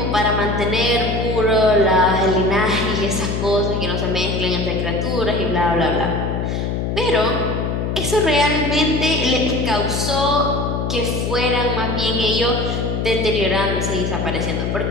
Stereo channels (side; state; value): left; noise; hum, 1 dB below the sound